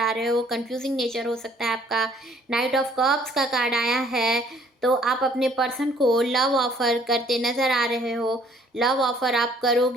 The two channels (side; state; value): both; normal; correlation 0.59